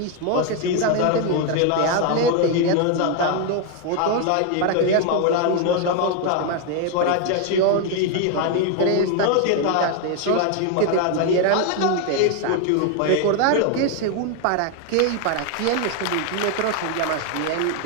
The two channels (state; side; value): different; both; correlation 0.01